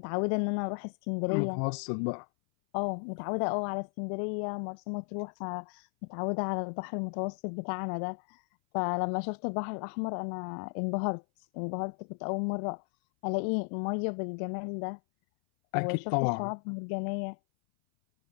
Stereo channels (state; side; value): silent; right; 55 dB below the other